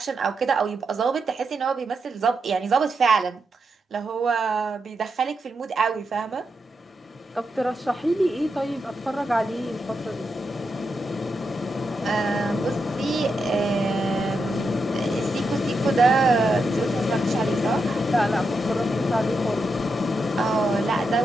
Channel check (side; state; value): both; normal; correlation 0.85